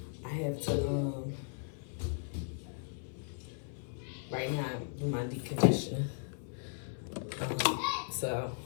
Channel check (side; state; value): right; silent; 53 dB below the other